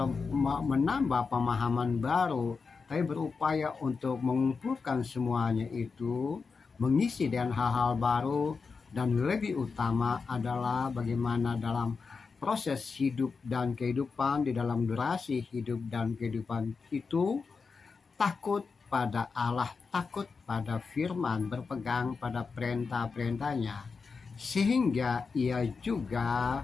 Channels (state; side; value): quieter; right; 4.9 dB